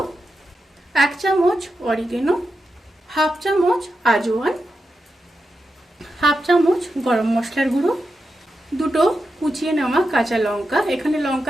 1 চামচ অরিগেনো, হাফ চামচ আজওয়ান, হাফ চামচ গরম মশলার গুঁড়ো, দুটো কুচিয়ে নেওয়া কাঁচা লঙ্কা, এখানে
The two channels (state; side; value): normal; both; correlation 0.88